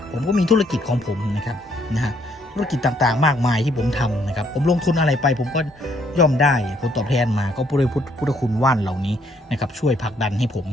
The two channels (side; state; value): both; normal; correlation 0.69